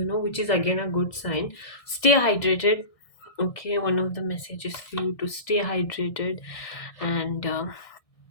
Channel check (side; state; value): right; late; 1.6 ms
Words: which is again a good sign. Stay hydrated. Okay, one of the messages for you to stay hydrated. And